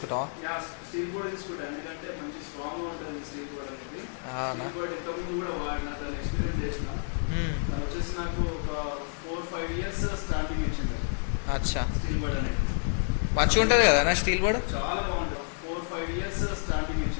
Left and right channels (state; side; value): silent; right; digital silence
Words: స్టీల్ బోర్డ్ తీసుకుంటాను, ఎందుకంటే మంచి స్ట్రాంగ్ గా ఉంటుంది స్టీల్ బోర్డ్ అనేది. స్టీల్ బోర్డ్ ఇంతకుముందు కూడా వాడిన, దాన్ని ఎక్స్పీరియన్స్ చేసిన. దాని వచ్చేసి నాకు ఒక 4-5 years స్టార్టింగ్ ఇచ్చింది. అచ్చా, స్టీల్ బోర్డ్ అనేది మంచిగా ఉంటుంది కదా నా స్టీల్ బోర్డ్? చాలా బాగుంటుంది. 4-5 years స్టార్టింగ్